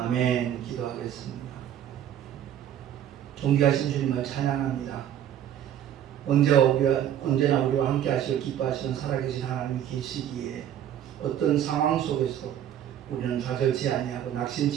기도하겠습니다. 존귀하신 주님을 찬양합니다. 언제나 우리와 함께 하시고 기뻐하시는 살아계신 하나님이 계시기에 어떤 상황 속에서도 우리는 좌절치 아니하고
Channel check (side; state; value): left; quieter; 10.5 dB